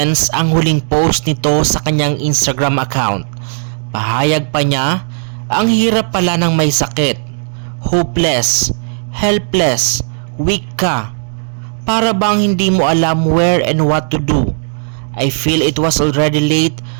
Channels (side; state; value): left; silent; digital silence